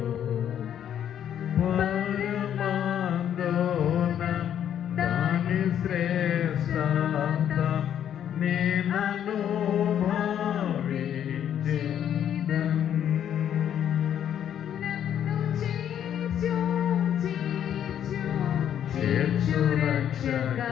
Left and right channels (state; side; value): quieter; right; 9.8 dB